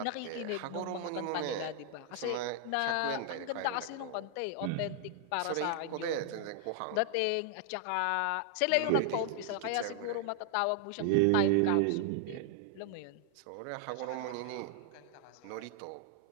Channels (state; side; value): different; both; correlation 0.00